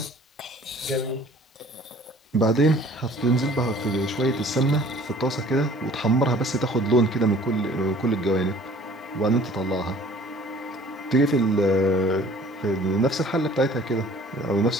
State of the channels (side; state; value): both; normal; correlation 0.51